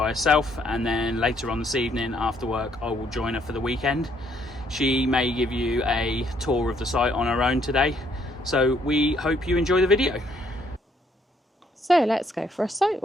herself, and then later on this evening after work I will join her for the weekend. She may give you a tour of the site on her own today, so we hope you enjoy the video. So let's go for a site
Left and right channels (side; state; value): both; normal; correlation 0.68